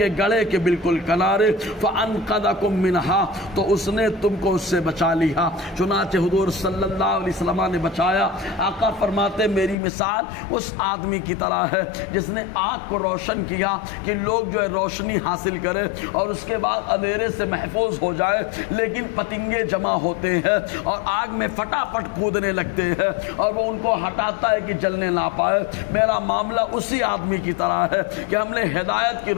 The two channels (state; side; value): drops out; right; at 9.8 s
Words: گڑھے کے بالکل کنارے، فَأَنْقَذَكُم مِّنْهَا، تو اس نے تم کو اس سے بچا لیا۔ چنانچہ حضور صلی اللہ علیہ وسلم نے بچایا۔ آقا فرماتے میری مثال اس آدمی کی طرح ہے جس نے آگ کو روشن کیا کہ لوگ جو ہے روشنی حاصل کرے اور اس کے بعد اندھیرے سے محفوظ ہو جائے، لیکن پتنگے جمع ہوتے ہیں اور آگ میں فٹافٹ کودنے لگتے ہیں اور وہ ان کو ہٹاتا ہے کہ جلنے نہ پائے۔ میرا معاملہ اسی آدمی کی طرح ہے کہ ہم نے ہدایت کی